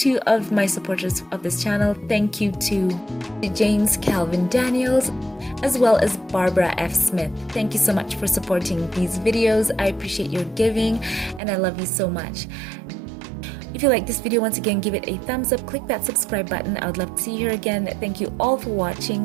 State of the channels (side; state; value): left; drops out; at 11.4 s